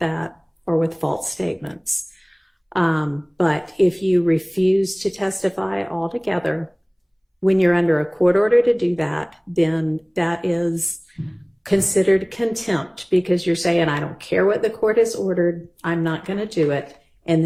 or with false statements. But if you refuse to testify altogether, when you're under a court order to do that, then that is considered contempt because you're saying, I don't care what the court has ordered, I'm not going to do it, and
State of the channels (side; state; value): both; identical; correlation 1.00